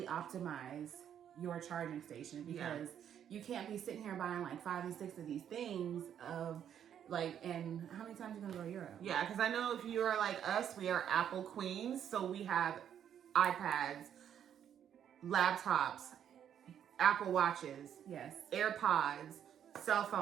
optimize your charging station, because you can't be sitting here buying like 5 and 6 of these things and how many times are you gonna go to Europe? Yeah, because I know if you are like us, we are Apple queens, so we have iPads, laptops, Apple Watches, yes, AirPods, cell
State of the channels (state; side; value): quieter; left; 9.3 dB